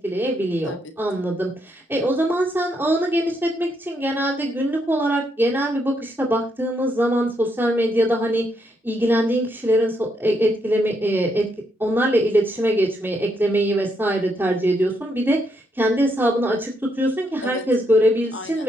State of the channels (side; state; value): both; normal; correlation 0.77